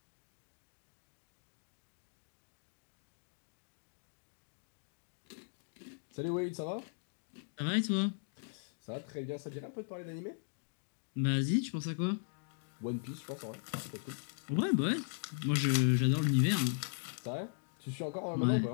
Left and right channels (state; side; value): silent; right; digital silence